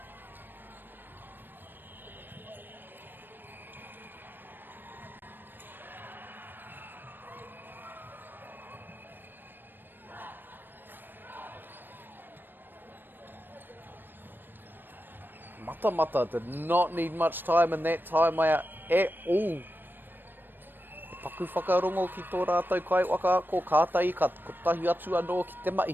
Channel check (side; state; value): left; late; 0.094 ms